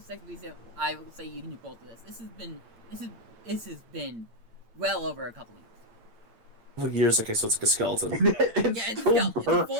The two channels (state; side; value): late; left; 8.8 ms